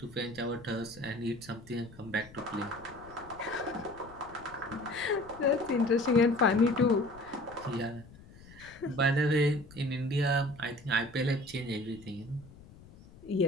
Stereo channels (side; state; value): left; noise; rumble, 21 dB below the sound